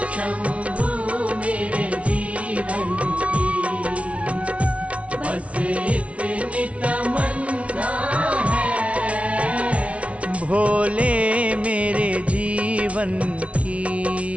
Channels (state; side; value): late; left; 0.063 ms